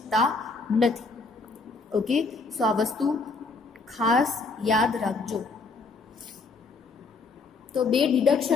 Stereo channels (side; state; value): right; quieter; 4.1 dB